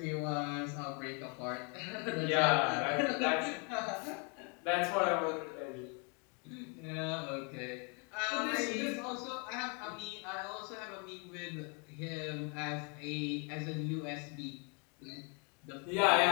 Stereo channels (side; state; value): right; quieter; 35.9 dB